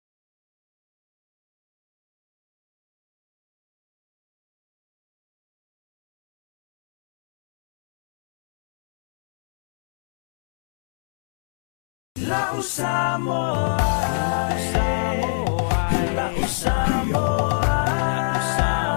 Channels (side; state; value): right; silent; digital silence